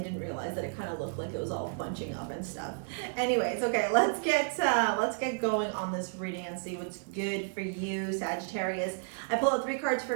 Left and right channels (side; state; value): left; silent; digital silence